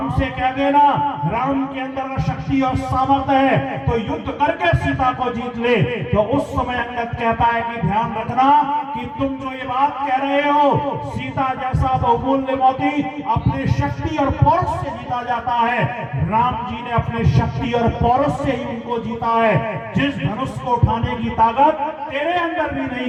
से कह देना, राम के अंदर शक्ति और सामर्थ्य है तो युद्ध करके सीता को जीत ले। तो उस समय अंगद कहता है कि ध्यान रखना कि कि तुम जो ये बात कह रहे हो सीता जैसा बहुमूल्य मोती अपने शक्ति और पौरुष से जीता जाता है, राम जी ने अपने शक्ति और पौरुष से ही उनको जीता है। जिस धनुष को उठाने की ताकत तेरे अंदर भी नहीं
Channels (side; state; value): both; identical; correlation 1.00